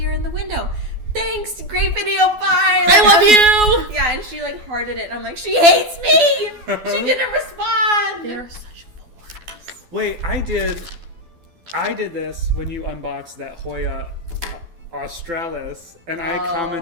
in the window. Thanks, great video, bye. I love you! Yeah, and she like hearted it, and I'm like, she hates me. She didn't respond. They are such bores. Wait, I did this when you unboxed that Hoya Australis, and I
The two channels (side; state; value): left; late; 12 ms